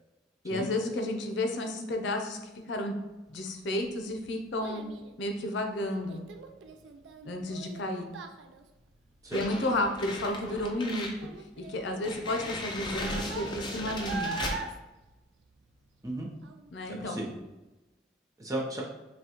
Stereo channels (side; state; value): both; normal; correlation 0.38